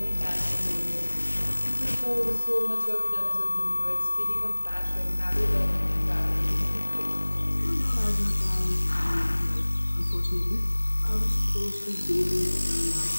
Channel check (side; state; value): both; inverted; correlation -1.00